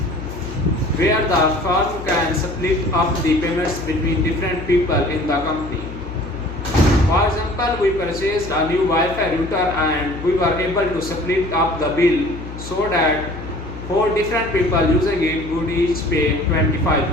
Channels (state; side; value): noise; left; hum, 11 dB below the sound